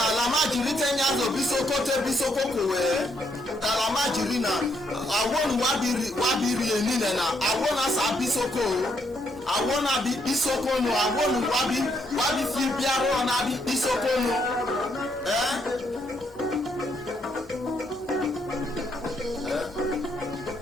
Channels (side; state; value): both; normal; correlation 0.74